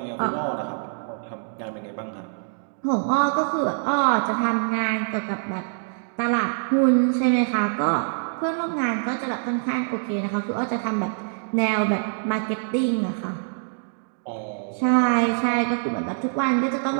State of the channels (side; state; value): left; silent; digital silence